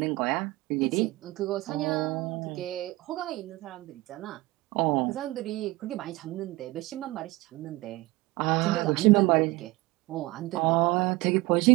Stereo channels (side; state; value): left; quieter; 20.8 dB